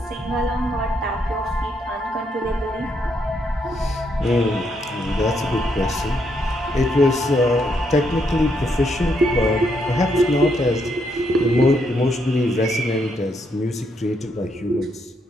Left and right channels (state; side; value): normal; both; correlation 0.76